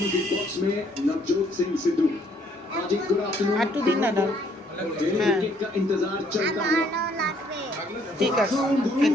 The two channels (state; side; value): normal; both; correlation 0.65